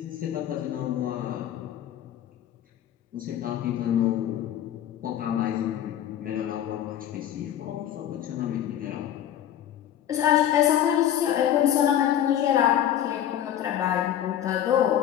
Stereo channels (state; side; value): quieter; right; 10.9 dB